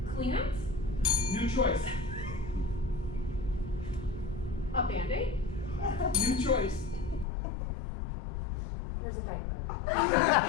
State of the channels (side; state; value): right; drops out; at 7.2 s